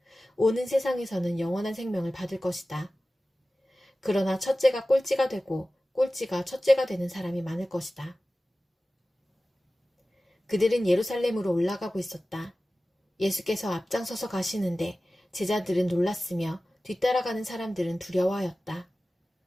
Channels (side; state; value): both; normal; correlation 0.96